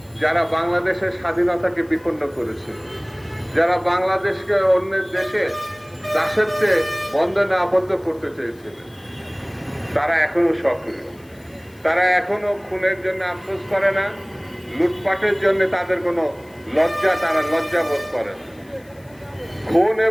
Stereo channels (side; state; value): left; noise; hiss, 29 dB below the sound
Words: যারা বাংলাদেশের স্বাধীনতাকে বিপন্ন করেছে, যারা বাংলাদেশকে অন্যের দেশে দাসত্বে বন্ধনে আবদ্ধ করতে চেয়েছিলেন। তারা এখনো সক্রিয়, তারা এখনো খুনের জন্য আফসোস করে না, লুটপাটের জন্য তাদের কোনো তারা লজ্জাবোধ করে না। খুন